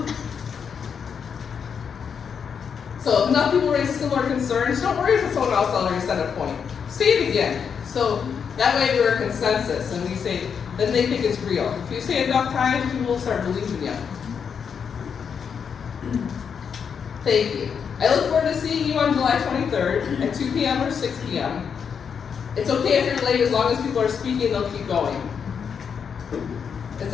So if enough people raise similar concerns, don't worry if someone else already said a point. Say it again. So that way we're a consensus and we say, then they think it's real. If you say it enough times, people will start believing you. Thank you. I look forward to seeing you on July 23rd at 2 p.m. or 6 p.m. It's okay if you're late, as long as people are speaking, they'll keep going. It's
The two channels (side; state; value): right; quieter; 6.8 dB